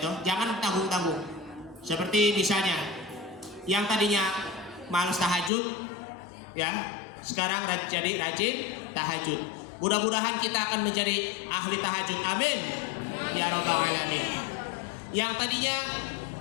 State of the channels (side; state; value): right; drops out; at 5.5 s